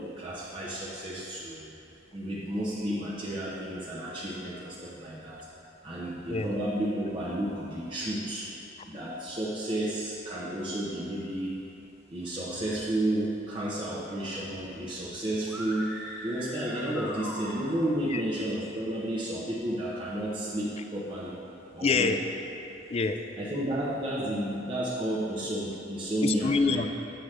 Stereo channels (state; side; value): normal; both; correlation 0.64